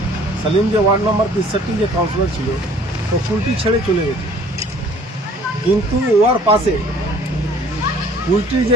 Salim যে ওয়ার্ড নম্বর 63 যে কাউন্সিলর ছিল তো কুলটি ছেড়ে চলে গেছে, কিন্তু ওর পাশে কুলটির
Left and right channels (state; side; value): normal; both; correlation 0.54